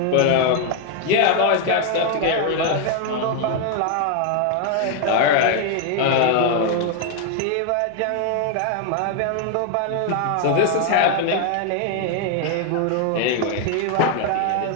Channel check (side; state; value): both; different; correlation 0.00